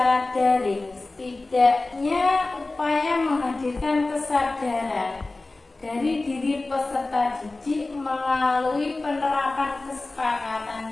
daring, setidaknya upaya menghadirkan kesadaran dari diri peserta didik melalui penerapan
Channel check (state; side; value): quieter; right; 3.2 dB